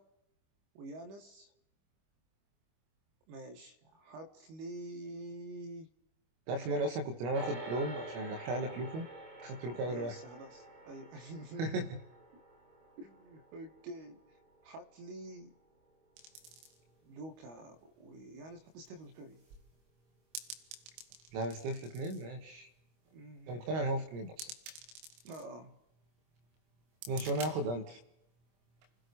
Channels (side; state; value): left; late; 25 ms